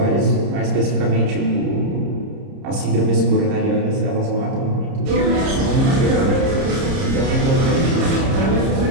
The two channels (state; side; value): late; left; 30 ms